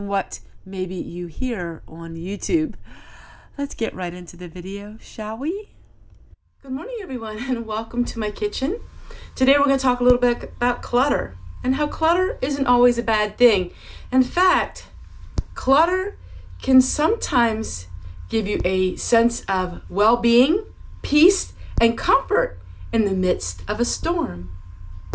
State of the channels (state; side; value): identical; both; correlation 1.00